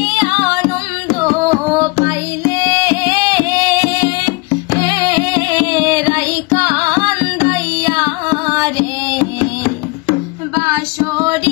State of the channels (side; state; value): right; quieter; 25.8 dB